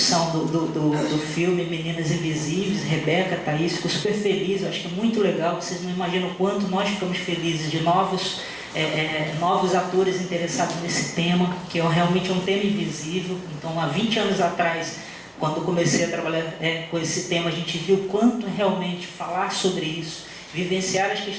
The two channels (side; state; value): both; identical; correlation 1.00